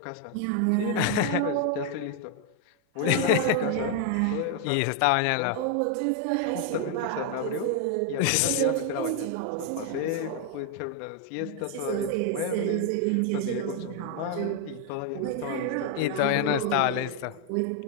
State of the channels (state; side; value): different; both; correlation 0.00